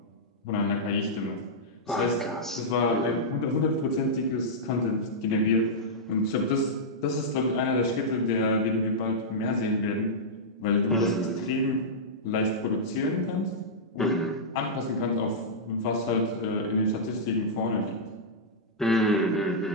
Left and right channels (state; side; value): normal; both; correlation -0.10